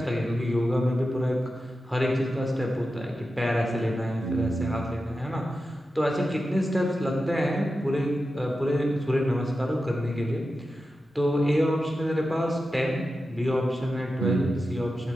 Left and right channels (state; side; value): normal; both; correlation 0.91